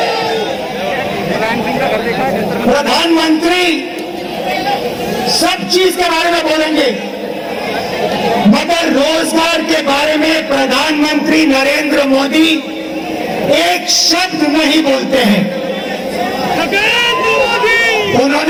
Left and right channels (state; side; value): identical; both; correlation 1.00